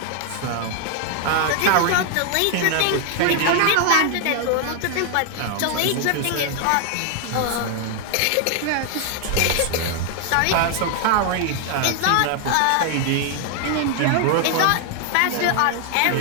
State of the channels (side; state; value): both; different; correlation 0.00